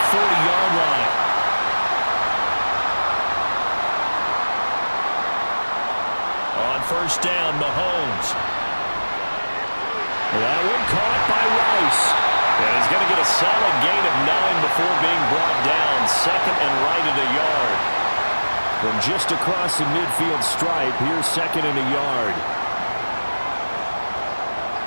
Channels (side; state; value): both; inverted; correlation -1.00